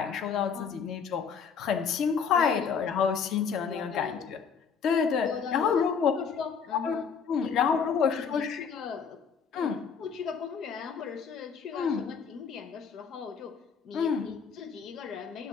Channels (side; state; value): right; quieter; 6.4 dB